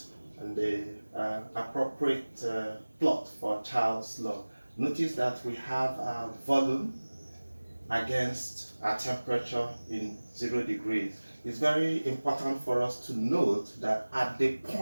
and the appropriate plot for Charles' law. Notice that we have a volume against our temperature in 0 degrees. It's very important for us to note that at the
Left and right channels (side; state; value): both; inverted; correlation -1.00